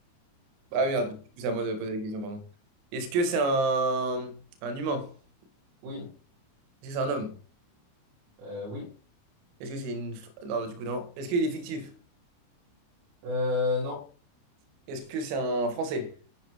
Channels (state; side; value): late; left; 29 ms